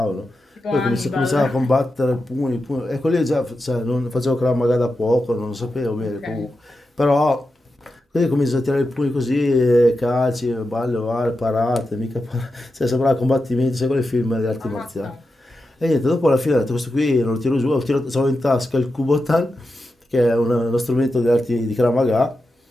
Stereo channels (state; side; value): normal; both; correlation 0.89